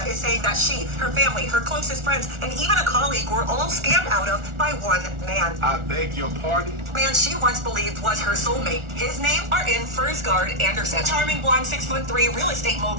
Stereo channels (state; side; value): late; left; 1.4 ms